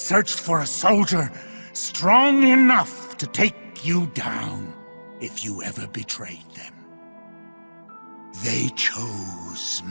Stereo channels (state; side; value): inverted; both; correlation -1.00